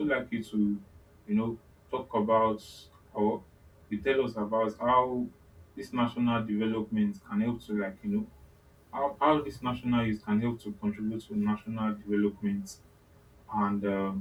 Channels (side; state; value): both; identical; correlation 1.00